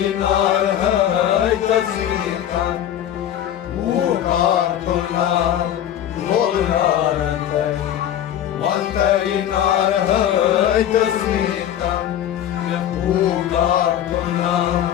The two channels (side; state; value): right; quieter; 10.9 dB